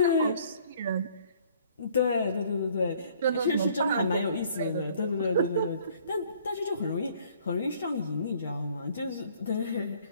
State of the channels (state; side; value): inverted; both; correlation -0.58